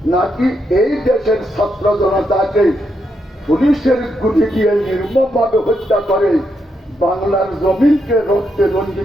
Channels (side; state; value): both; normal; correlation 0.81